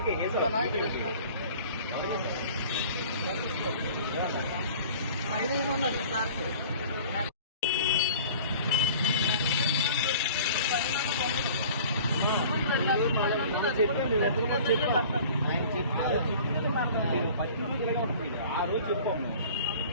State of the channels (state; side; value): inverted; both; correlation -0.46